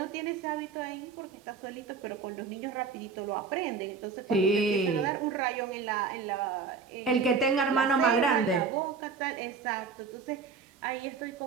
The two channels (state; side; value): quieter; left; 5.2 dB